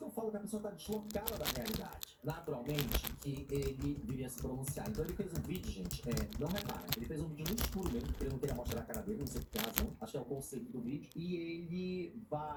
eu falo, que a pessoa tá deslocada da realidade. Naturalmente, que ele viria se pronunciar. Então ele fez um vídeo, gente, não repara, ele fez um vídeo no escuro mesmo, porque ele não queria mostrar a cara dele, não sei por que razão, acho que é o conceito do vídeo, e ele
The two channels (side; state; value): both; identical; correlation 1.00